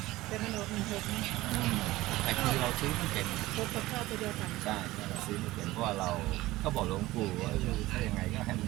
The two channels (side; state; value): left; quieter; 18.0 dB